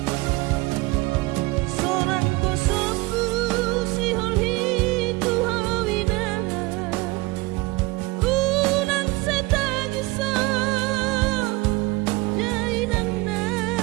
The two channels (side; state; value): left; quieter; 23.0 dB